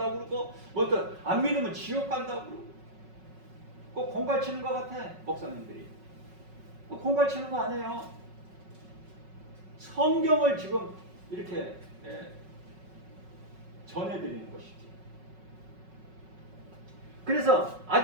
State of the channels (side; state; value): left; late; 5.4 ms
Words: 그러고 뭐 또 안 믿으면 지옥 간다고 그러고 꼭 공갈 치는 것 같아 목사님들이. 공갈 치는 거 아니에요. 성경을 지금 이렇게 전해드리는 것이지. 그래서